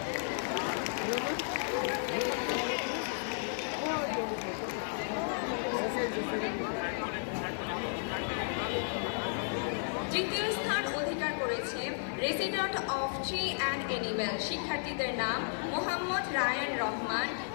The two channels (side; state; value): right; silent; 55 dB below the other